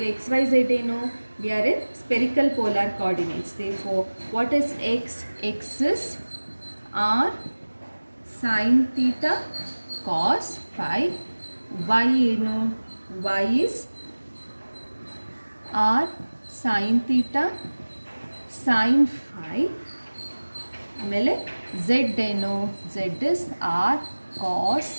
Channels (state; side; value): inverted; both; correlation -1.00